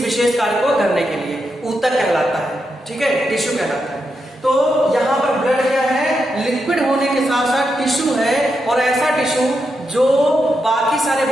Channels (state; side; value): normal; both; correlation 0.85